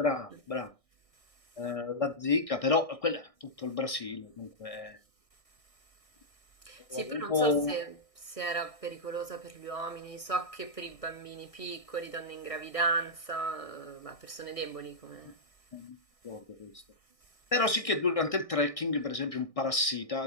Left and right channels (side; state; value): right; late; 1.6 ms